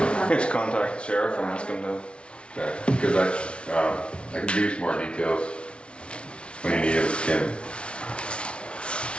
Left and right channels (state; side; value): late; right; 0.059 ms